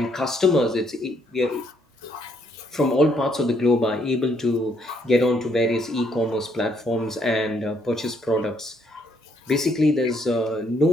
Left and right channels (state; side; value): normal; both; correlation 0.70